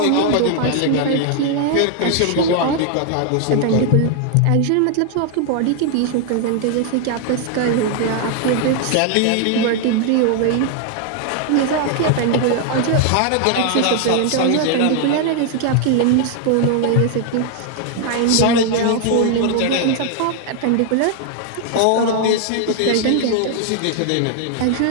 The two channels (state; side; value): different; both; correlation 0.00